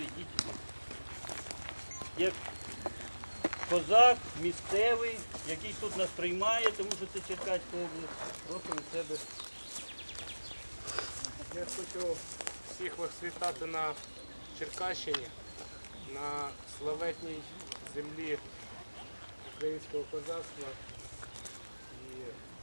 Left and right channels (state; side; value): inverted; both; correlation -1.00